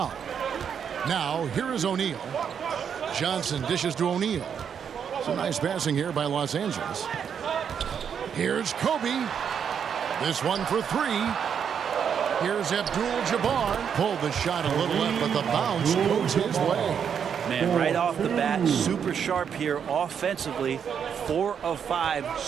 Now, here is O'Neal. Johnson dishes to O'Neal. Some nice passing here by Los Angeles. Here's Kobe. This one for 3. Here's Abdul-Jabbar. Pulled the shot a little left, but the bounce goes his way. Man, right off the bat, super sharp here offensively. 4 of 5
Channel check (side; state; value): left; quieter; 7.6 dB